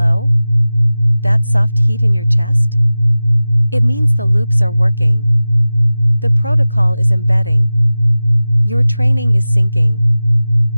That soft heat in your chest? It means the loops are working. The protocol is embedding. Your training is sinking.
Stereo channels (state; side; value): inverted; both; correlation -0.96